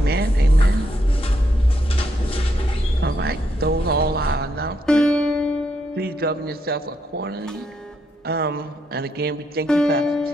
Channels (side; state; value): both; normal; correlation 0.78